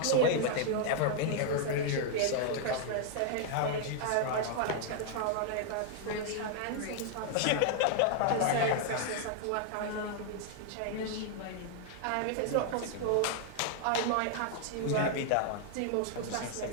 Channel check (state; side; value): different; both; correlation 0.00